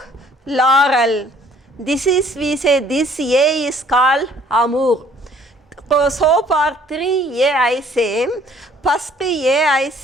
laurel. This is we say this A is called Amur. So for 3A I say, first A I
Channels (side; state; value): both; normal; correlation 0.58